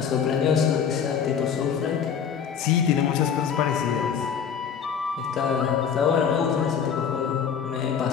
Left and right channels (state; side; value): quieter; right; 7.4 dB